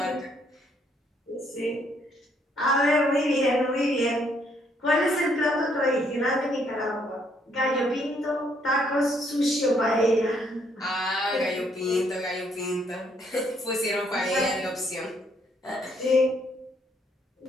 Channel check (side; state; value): both; normal; correlation 0.69